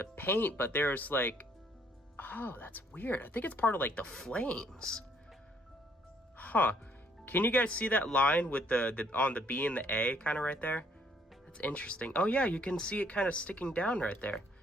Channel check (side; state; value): both; normal; correlation 0.65